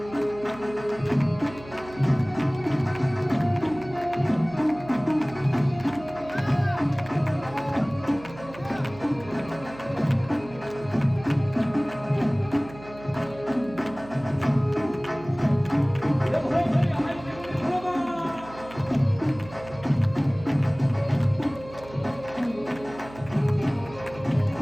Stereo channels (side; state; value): right; noise; hum, 18 dB below the sound